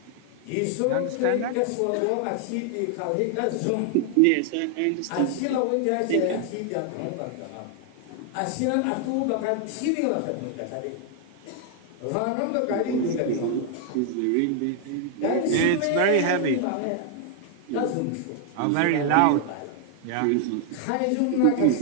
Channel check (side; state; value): both; different; correlation 0.00